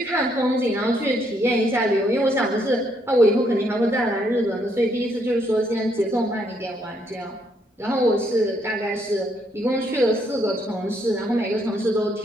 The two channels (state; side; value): normal; both; correlation 0.72